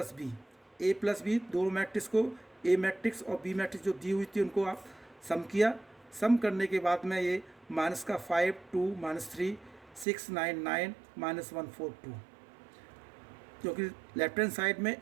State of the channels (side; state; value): left; drops out; at 10.1 s